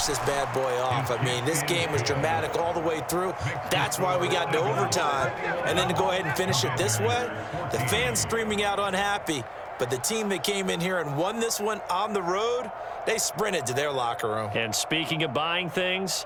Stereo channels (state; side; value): identical; both; correlation 1.00